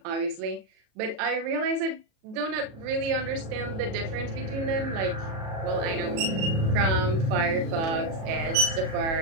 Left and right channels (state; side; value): late; left; 37 ms